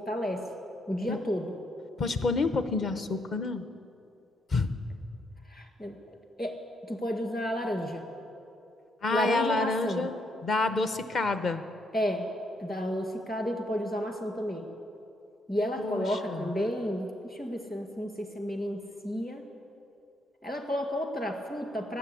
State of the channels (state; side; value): normal; both; correlation 0.75